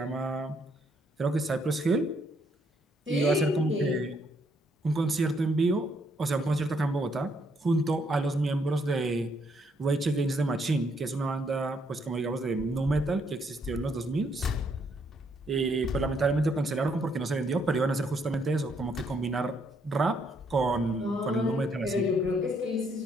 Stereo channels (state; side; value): normal; both; correlation 0.72